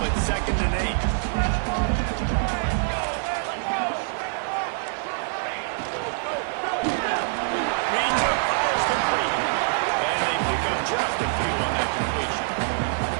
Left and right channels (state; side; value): silent; left; 56 dB below the other